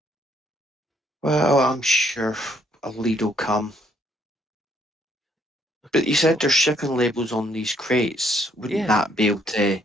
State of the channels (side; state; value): both; normal; correlation 0.68